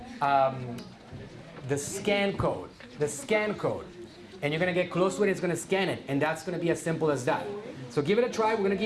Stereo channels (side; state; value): both; identical; correlation 1.00